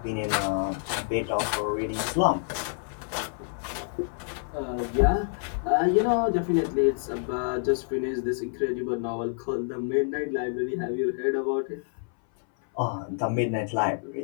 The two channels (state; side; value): silent; right; 60 dB below the other